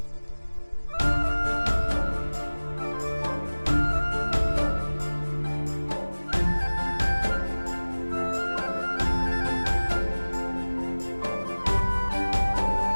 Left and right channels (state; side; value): inverted; both; correlation -1.00